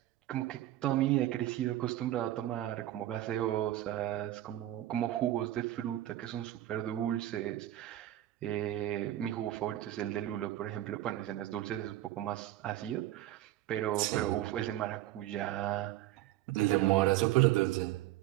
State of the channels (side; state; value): left; quieter; 14.2 dB